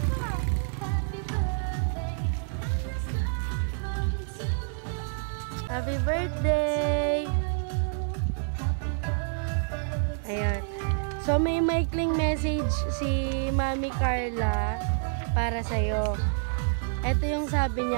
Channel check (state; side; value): silent; left; 59 dB below the other